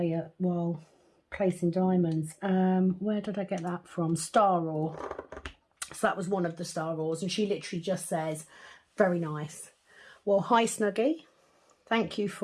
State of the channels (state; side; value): identical; both; correlation 1.00